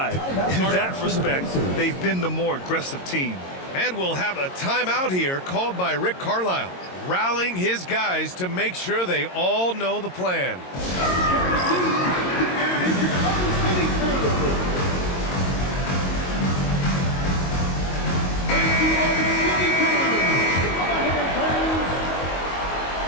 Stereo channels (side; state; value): right; late; 22 ms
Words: In that respect, they've been the more aggressive team. And we'll have a timeout here called by Rick Carlisle, rallying his guys to make sure they all know the plan.